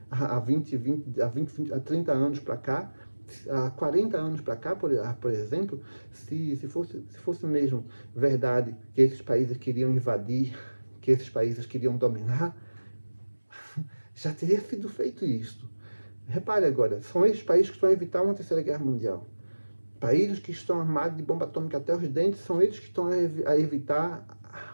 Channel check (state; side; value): inverted; both; correlation -1.00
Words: há 30 anos para cá, há 40 anos para cá, por exemplo, se fosse mesmo verdade que esses países queriam invadir, que esses países queriam dominar, já teria sido feito isso. Repare agora, são esses países que estão a evitar uma terceira guerra mundial. Países que estão armados de bomba atômica até os dentes são eles que estão a evitar